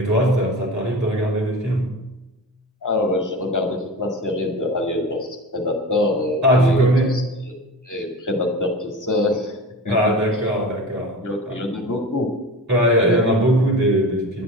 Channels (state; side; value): normal; both; correlation 0.32